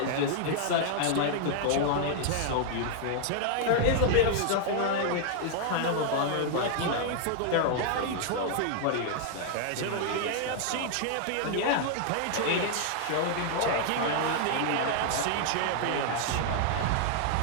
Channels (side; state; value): both; different; correlation -0.01